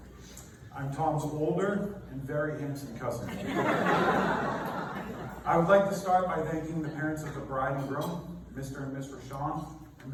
I'm Tom's older and very handsome cousin. I would like to start by thanking the parents of the bride and groom, Mr. and Miss Rashawn, and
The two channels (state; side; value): identical; both; correlation 1.00